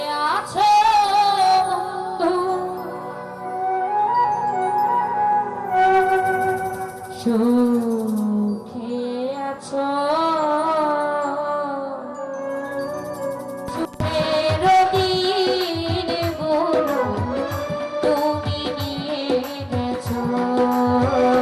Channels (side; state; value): both; identical; correlation 1.00